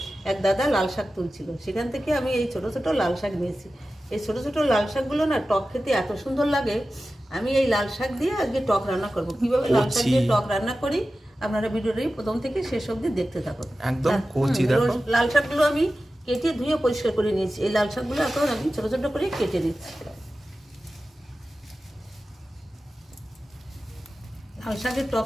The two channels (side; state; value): both; normal; correlation 0.94